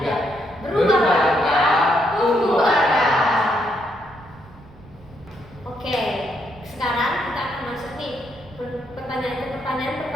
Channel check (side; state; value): right; noise; rumble, 22 dB below the sound